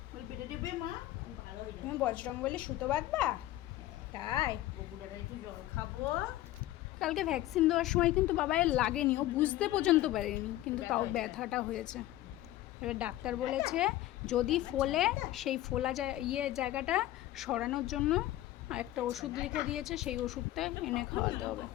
বল পেটে দেবে মা, ভালো হয়ে যাবে। তুমি বজরংবলী সুতো বাঁধবা? তাই বগুড়াটা একটু জল খাবো। কালকে ভ্যাকসিন দেওয়ার সময় কিন্তু বাবায়ের লাগেনি, ও বুঝতে পর্যন্ত পারেনি, কিন্তু তাও ব্যথাটা হয়েছে। এবার ডাক্তার বলেছে যদি ফোলে সেই ফোলা জায়গাটা সরানোর জন্য একটা ওষুধ লিখে দিয়েছে, সেই ওষুধটা এনে খাওয়াতে হবে।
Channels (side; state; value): right; quieter; 15.0 dB